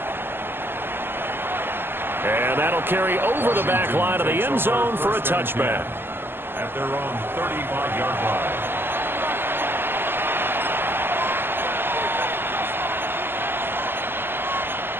And that'll carry over the back line of the end zone for a touchback. At their own 35-yard line.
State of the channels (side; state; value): left; late; 0.10 ms